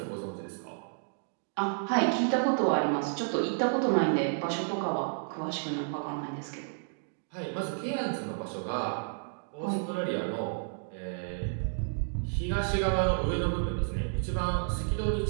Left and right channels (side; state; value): left; silent; digital silence